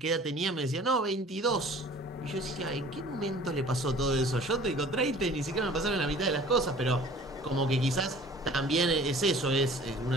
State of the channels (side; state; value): both; normal; correlation 0.48